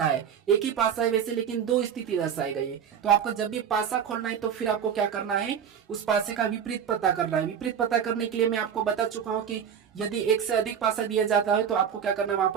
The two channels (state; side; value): quieter; left; 8.0 dB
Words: है। एक ही पासा है वैसे, लेकिन 2 स्थिति दर्शाई गई है। तो आपको जब भी पासा खोलना है तो फिर आपको क्या करना है, उस पासे का विपरीत पता करना है। विपरीत पता करने के लिए मैं आपको बता चुका हूं कि यदि एक से अधिक पासा दिया जाता है तो आपको क्या करना है, वहां